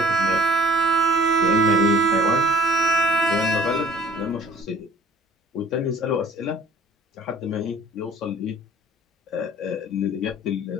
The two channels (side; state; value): both; normal; correlation 0.52